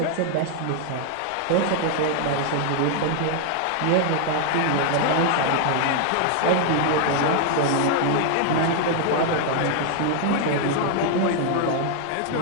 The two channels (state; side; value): different; both; correlation 0.00